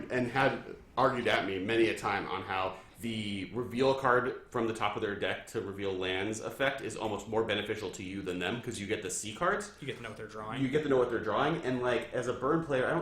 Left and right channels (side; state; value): both; identical; correlation 1.00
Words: and had argued at me many a time on how the reveal card from the top of their deck to reveal lands effect is almost more beneficial to you than them because you get the C cards. You get to know what they're drawing. You get to know what they're drawing, and like as a burn player, I